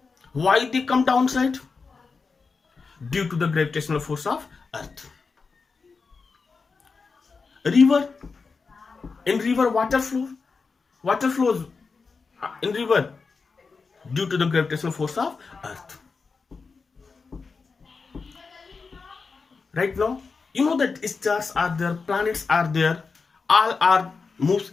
Why they come downside? Due to the gravitational force of earth. River, in river water flows in river due to the gravitational force of earth. Right now, you know that stars are there, planets are there, all are moves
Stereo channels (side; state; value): right; quieter; 4.7 dB